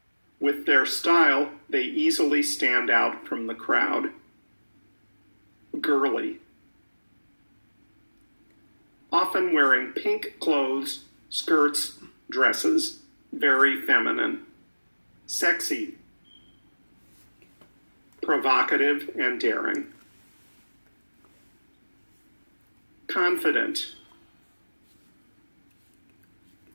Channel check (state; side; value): inverted; both; correlation -1.00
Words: With their style, they easily stand out from the crowd. Girly. Often wearing pink clothes, skirts, dresses. Very feminine. Sexy. Provocative and daring. Confident.